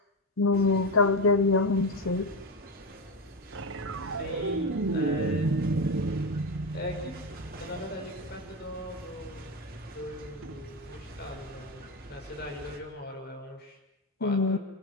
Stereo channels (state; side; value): normal; both; correlation 0.15